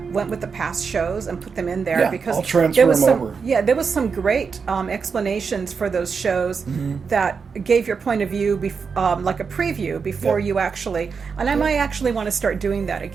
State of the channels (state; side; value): quieter; left; 5.6 dB